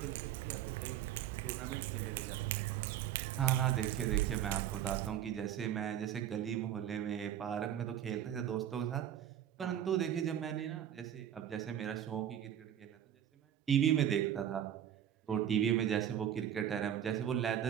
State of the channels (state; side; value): quieter; left; 10.2 dB